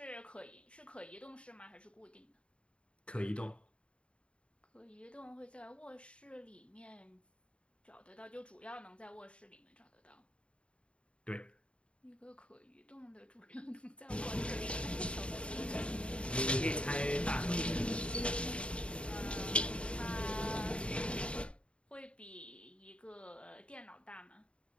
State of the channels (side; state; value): right; late; 0.058 ms